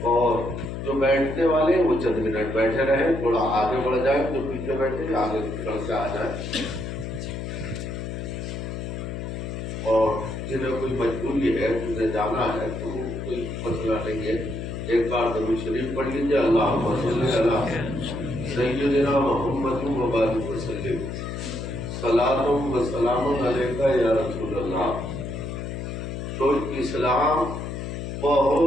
اور جو بیٹھنے والے ہیں وہ چند منٹ بیٹھے رہیں، تھوڑا آگے بڑھ جائیں، جو پیچھے بیٹھے آگے بڑھ کے آ جائیں. اور جنہیں کوئی مجبوری ہے جنہیں جانا ہے تو کوئی مسئلہ نہیں ہے. ایک بار درود شریف پڑھ لیجیے. اللہم صلی علی سیدنا محمد و بارک وسلم. صلاۃ و سلام علیک یا رسول اللہ. تو اسلام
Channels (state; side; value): noise; left; hum, 6 dB below the sound